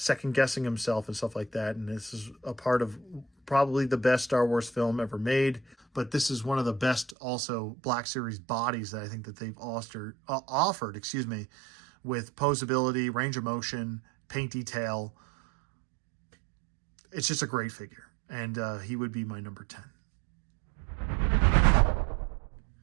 guessing himself and stuff like that. And this is a part of probably the best Star Wars film ever made. But this is one of the best also Black Series bodies that I think that they've offered, with posability, range of motion, paint detail. It's just a great figure. And he would be my number 10.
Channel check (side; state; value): left; drops out; at 7.2 s